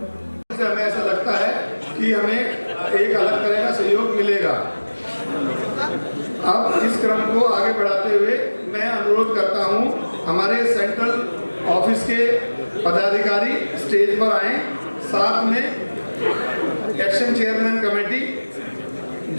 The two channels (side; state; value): both; inverted; correlation -1.00